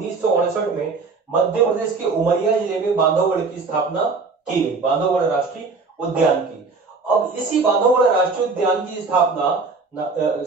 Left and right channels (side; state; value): left; quieter; 4.3 dB